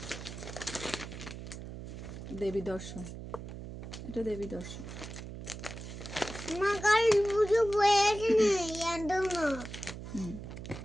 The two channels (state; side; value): noise; right; hum, 10 dB below the sound